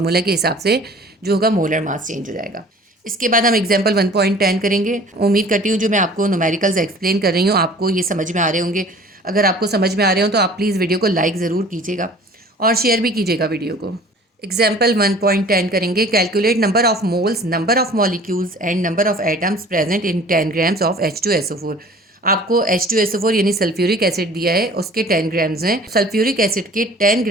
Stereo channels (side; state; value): both; normal; correlation 0.47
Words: के हिसाब से जो होगा मोलर मास चेंज हो जाएगा। इसके बाद हम एग्जाम्पल 1.10 करेंगे। उम्मीद करती हूँ जो मैं आपको न्यूमेरिकल्स एक्सप्लेन कर रही हूँ आपको ये समझ में आ रहे होंगे। अगर आपको समझ में आ रहे हो तो आप प्लीज़ वीडियो को लाइक ज़रूर कीजिएगा और शेयर भी कीजिएगा वीडियो को। एग्जाम्पल 1.10 करेंगे। Calculate number of moles, number of molecules and number of atoms present in 10 grams of H2SO4। आपको H2SO4 यानी सल्फ्यूरिक एसिड दिया है, उसके 10 ग्राम्स हैं। सल्फ्यूरिक एसिड के 10